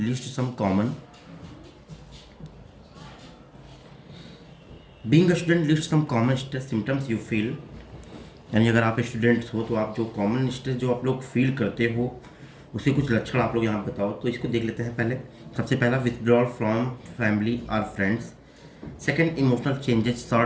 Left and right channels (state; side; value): identical; both; correlation 1.00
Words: some common stress symptoms you feel. यानी अगर आप स्टूडेंट्स हो तो आप जो कॉमन स्ट्रेस जो आप लोग फील करते हो उसके कुछ लक्षण आप लोग यहाँ बताओ। तो इसको देख लेते हैं। पहले सबसे पहला, विथड्रॉल फ्रॉम फैमिली और friends. Second, emotional changes,